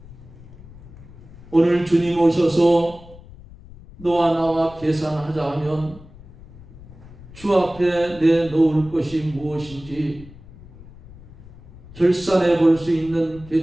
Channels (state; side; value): noise; left; rumble, 19 dB below the sound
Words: 오늘 주님 오셔서 너와 나와 계산하자 하면 주 앞에 내놓을 것이 무엇인지 결산해 볼 수 있는